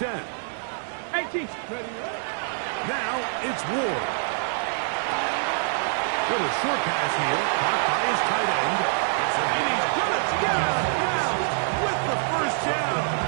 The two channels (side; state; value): left; silent; 56 dB below the other